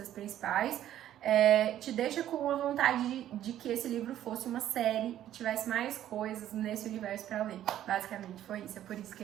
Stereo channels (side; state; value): left; quieter; 11.9 dB